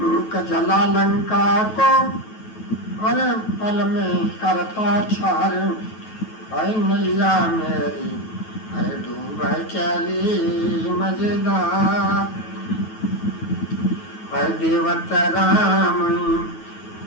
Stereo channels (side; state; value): right; late; 9.2 ms